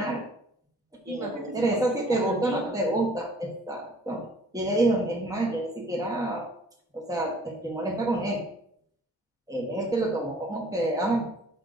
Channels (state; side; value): normal; both; correlation 0.55